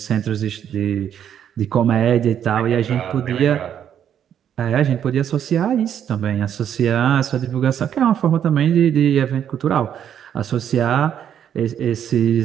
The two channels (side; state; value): left; quieter; 9.3 dB